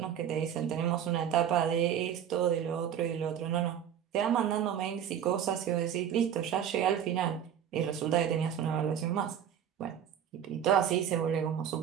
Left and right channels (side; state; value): left; quieter; 9.2 dB